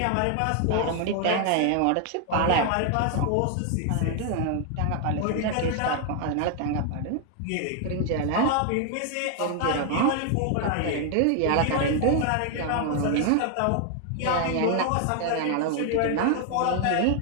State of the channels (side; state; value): both; different; correlation 0.00